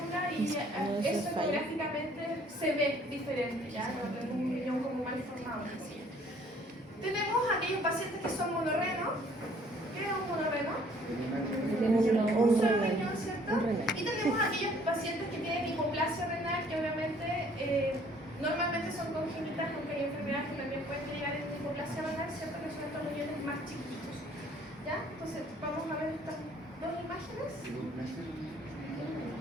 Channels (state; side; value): normal; both; correlation 0.58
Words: y eso ecográficamente se ve diferente, ya no tenemos un riñón como mal formado. Así. Tenemos aquellos pacientes que son monorreno. ¿Qué es un monorreno? Un solo riñón, ¿cierto? Y tenemos aquellos pacientes que tienen hipoplasia renal, que obviamente normalmente son congénitas, aunque hay enfermedades que también pueden llegar en hipoplasia renal, ¿cierto? Que son estos riñones más chiquitos. ¿Ya? Entonces, vamos a ver estas dos imágenes.